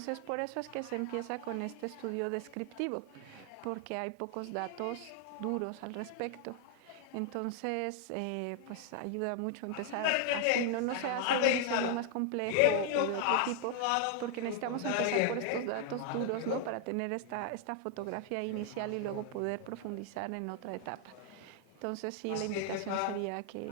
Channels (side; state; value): both; different; correlation 0.00